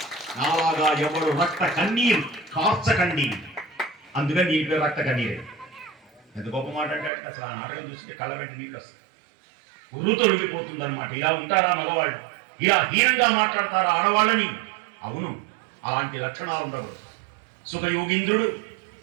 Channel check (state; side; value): drops out; left; at 7.1 s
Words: నాలాగా ఎవరు రక్త కన్నీరు కార్చకండి. అందుకని నీ పేరు రక్త కన్నీరు. ఎంత గొప్ప మాట అంటే అసలు ఆ నాటకం చూస్తే కళ్ళ వెంట నీళ్ళు వస్తాయి, ఉర్రు తొలగిపోతుంది అనమాట. ఇలా ఉంటారా మగవాళ్ళు? ఇలా హీనంగా మాట్లాడతారా ఆడవాళ్ళని? అవును, అలాంటి లక్షణాలు ఉండకూడదు. సుఖయోగీంద్రుడు